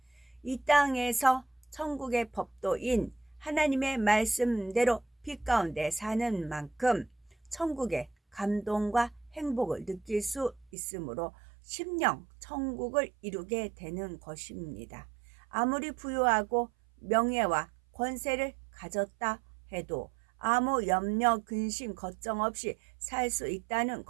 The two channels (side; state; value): left; drops out; at 10.7 s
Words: 이 땅에서 천국의 법도인 하나님의 말씀대로 빛 가운데 사는 만큼 천국의 감동과 행복을 느낄 수 있으므로 심령 천국을 이루게 되는 것입니다. 아무리 부유하고 명예와 권세를 가졌다 해도 아무 염려, 근심, 걱정 없이 살 수 있다는